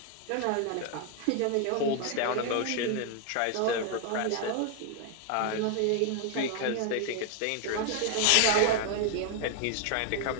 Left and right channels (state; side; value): different; both; correlation 0.00